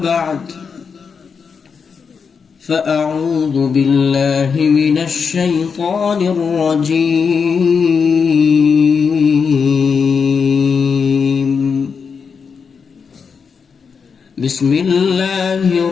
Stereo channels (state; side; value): quieter; right; 5.9 dB